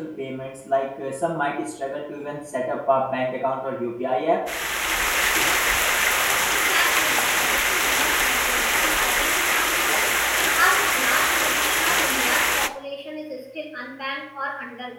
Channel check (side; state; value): both; identical; correlation 1.00